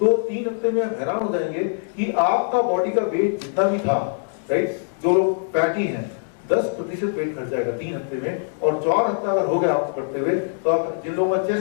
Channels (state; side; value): silent; right; digital silence